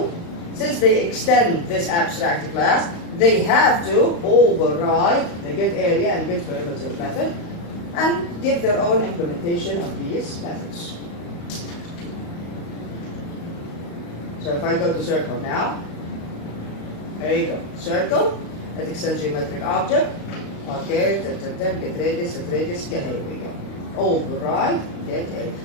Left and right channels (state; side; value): late; right; 35 ms